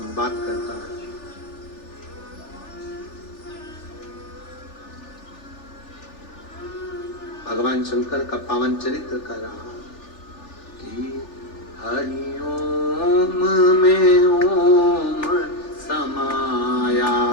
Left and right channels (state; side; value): late; right; 3.4 ms